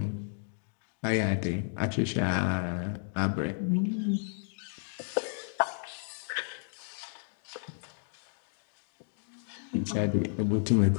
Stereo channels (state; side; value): silent; right; 56 dB below the other